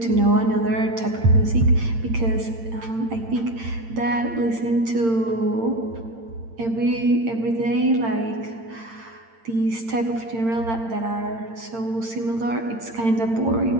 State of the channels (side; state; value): left; late; 8.8 ms